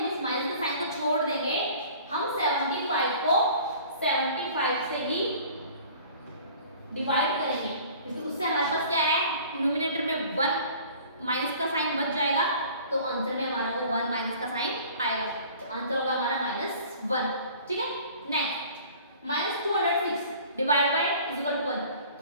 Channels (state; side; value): inverted; both; correlation -0.47